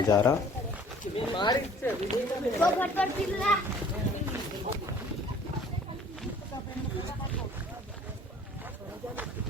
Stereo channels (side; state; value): both; normal; correlation 0.52